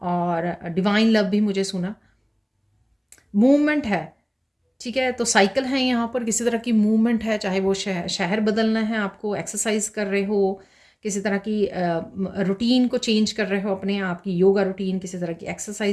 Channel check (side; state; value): both; identical; correlation 1.00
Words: और डिवाइन लव भी मुझे सुना। मूवमेंट है, ठीक है? तो साइकिल है यहाँ पर, किसी तरह की मूवमेंट है, चाहे वो शहर बदलना है आपको, एक्सरसाइज कर रहे हो, किसी तरह की रूटीन को चेंज कर रहे हो, अपने आप की योगा रूटीन, किसी तरह की